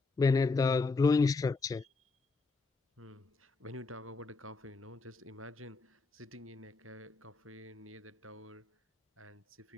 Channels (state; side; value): quieter; right; 3.9 dB